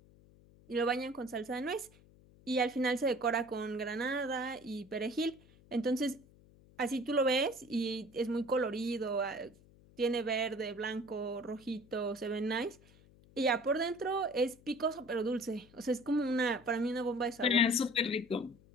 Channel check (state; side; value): noise; left; hum, 25 dB below the sound